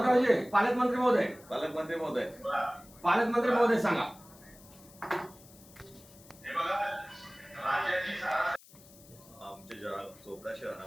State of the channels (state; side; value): noise; left; hiss, 23 dB below the sound